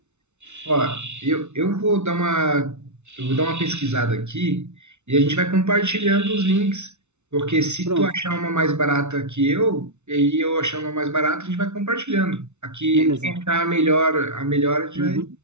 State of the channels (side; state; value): left; late; 0.82 ms